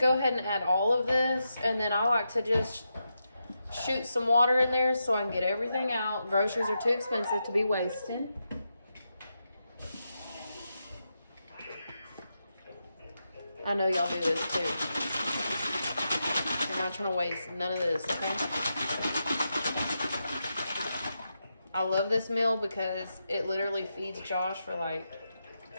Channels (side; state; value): both; inverted; correlation -0.87